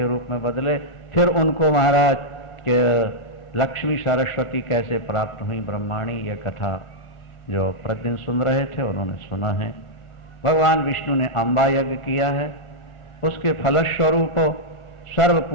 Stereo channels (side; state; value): right; late; 1.4 ms